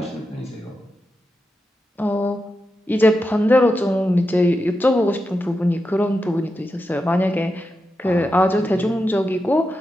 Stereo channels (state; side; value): normal; both; correlation 0.89